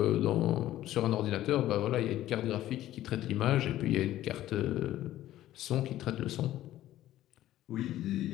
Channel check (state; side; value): quieter; right; 13.8 dB